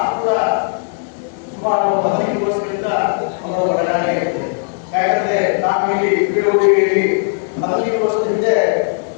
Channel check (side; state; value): right; silent; digital silence